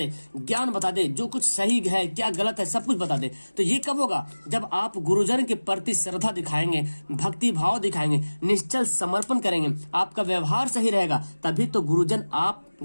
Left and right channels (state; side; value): inverted; both; correlation -1.00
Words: ज्ञान बता दे, जो कुछ सही है क्या गलत है सब कुछ बता दे। तो ये कब होगा, जब आप गुरुजन के प्रति श्रद्धा दिखाएंगे, भक्ति भाव दिखाएंगे, निश्चल समर्पण करेंगे, आपका व्यवहार सही रहेगा, तभी तो